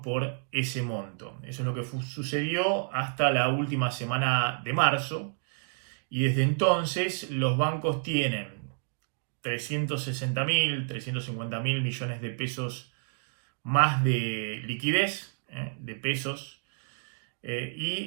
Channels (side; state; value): left; silent; digital silence